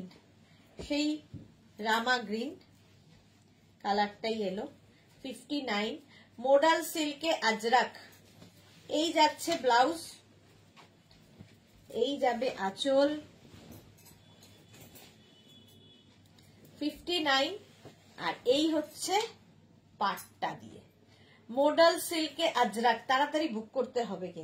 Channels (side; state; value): both; identical; correlation 1.00